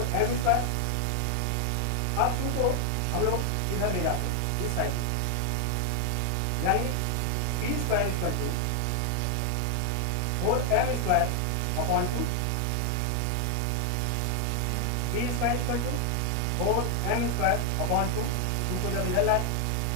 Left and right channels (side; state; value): both; different; correlation 0.00